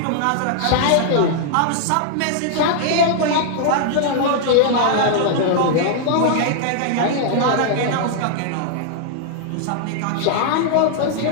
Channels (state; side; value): different; both; correlation -0.01